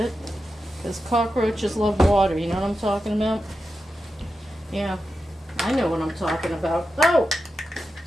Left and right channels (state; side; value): normal; both; correlation 0.90